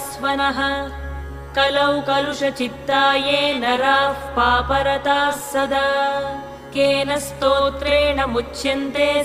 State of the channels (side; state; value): both; identical; correlation 1.00